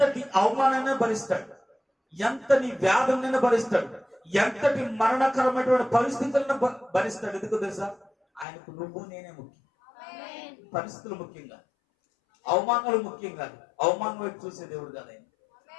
అవమానాన్ని భరిస్తాడు, ఎంతటి వ్యాధులైనా భరిస్తాడు, ఎంతటి మరణకరమైనటువంటి పరిస్థితులను భరిస్తాడు. ఎందుకు తెలుసా? ఆయనకు నువ్వు నేనే ముఖ్యం. పరిస్థితులు ముఖ్యంగా, అవమానాలు ముఖ్యం కాదు. అవమానం వైపు చూసే దేవుడు కాదు ఆయన.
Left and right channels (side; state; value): right; drops out; at 8.5 s